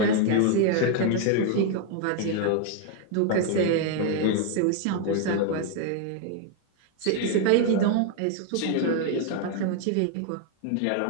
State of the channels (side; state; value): both; different; correlation 0.01